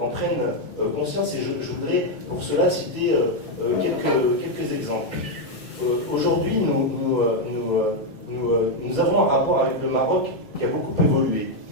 prenne conscience, et je voudrais pour cela citer quelques exemples. Aujourd'hui, nous avons un rapport avec le Maroc qui a beaucoup évolué.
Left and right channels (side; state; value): both; normal; correlation 0.02